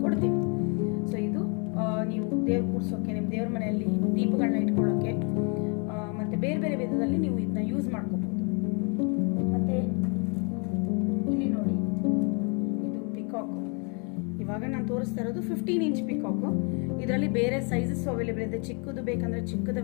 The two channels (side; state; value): right; quieter; 36.0 dB